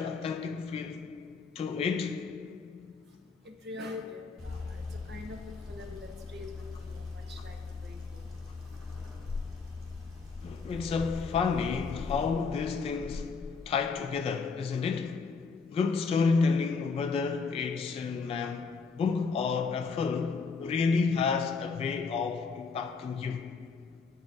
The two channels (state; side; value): quieter; right; 4.8 dB